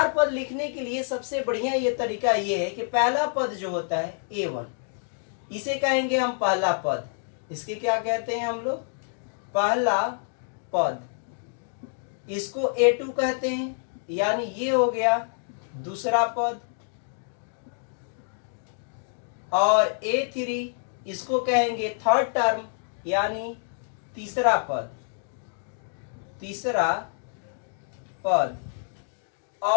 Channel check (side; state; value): right; silent; digital silence